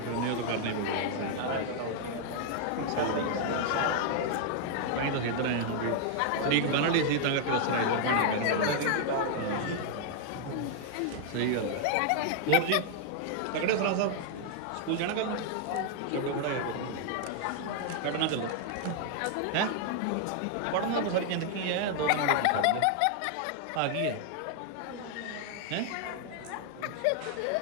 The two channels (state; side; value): different; both; correlation 0.00